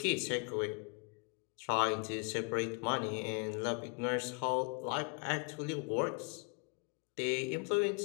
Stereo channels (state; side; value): quieter; right; 36.0 dB